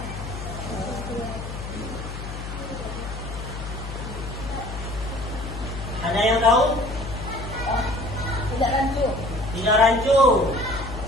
Ada yang tahu? Tidak rancu. Tidak rancu.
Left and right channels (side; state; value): left; noise; hum, 8 dB below the sound